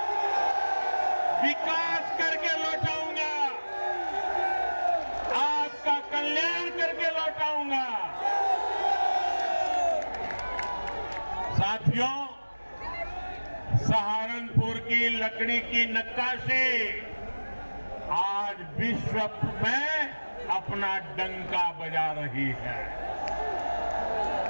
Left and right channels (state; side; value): inverted; both; correlation -1.00